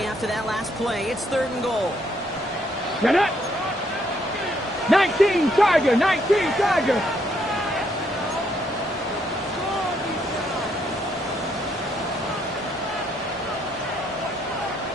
after that last play. It's third and goal. Get it. 19 Tiger. 19 Tiger.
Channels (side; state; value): both; normal; correlation 0.72